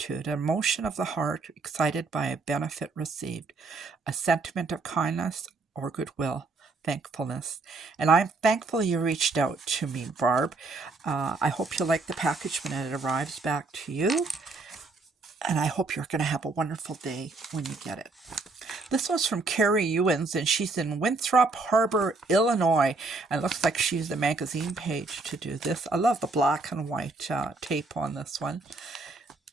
an emotion of the heart, excited by a benefit received, a sentiment of kindness or goodwill. Thankfulness. And I'm thankful you reached out to me, Barb. I hope you like the package when it arrives back to you. And I hope you're going to have a wonderful day when you get it. This one's from Carrie Ewins, and she's in Winthrop Harbor, Illinois. And it looks like she used the magazine page to do this. I love the black and white tape on this one.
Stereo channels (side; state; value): left; quieter; 3.6 dB